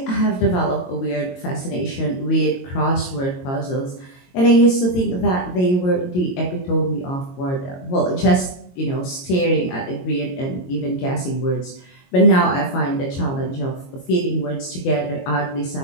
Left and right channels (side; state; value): right; late; 22 ms